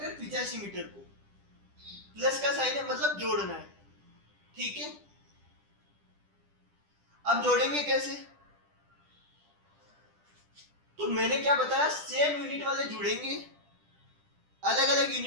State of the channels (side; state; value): left; late; 10 ms